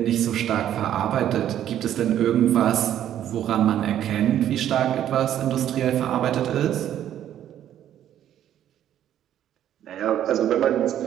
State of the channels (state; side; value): quieter; left; 11.1 dB